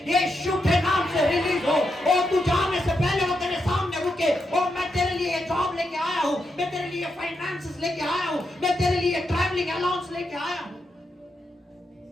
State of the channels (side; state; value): both; normal; correlation 0.84